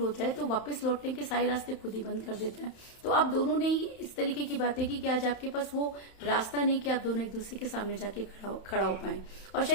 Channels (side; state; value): right; late; 31 ms